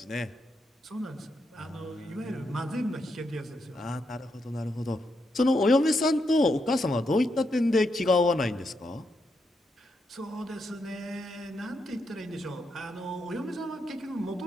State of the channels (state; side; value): normal; both; correlation 0.81